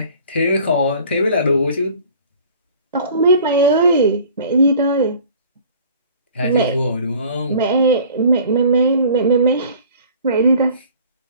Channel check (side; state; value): both; inverted; correlation -0.48